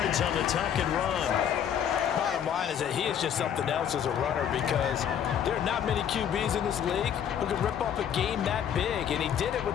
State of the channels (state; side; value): quieter; right; 9.0 dB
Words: on the tuck and run. Bottom line is that he is just something else as a runner because there are not many QBs in this league who can rip off a game that big, and he did it